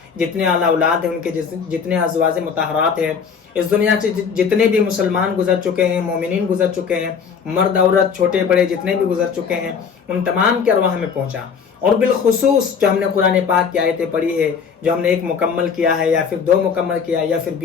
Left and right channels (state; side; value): quieter; right; 6.4 dB